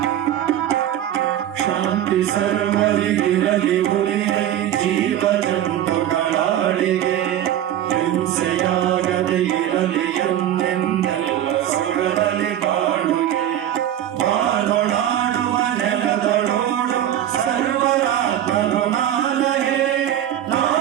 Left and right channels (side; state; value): left; quieter; 11.5 dB